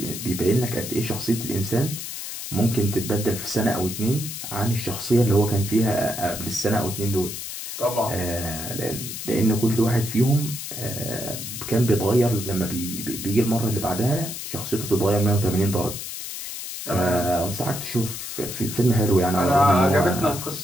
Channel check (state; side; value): noise; left; hiss, 7 dB below the sound